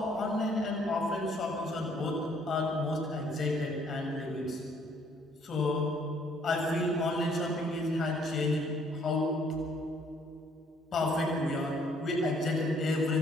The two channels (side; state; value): both; normal; correlation 0.64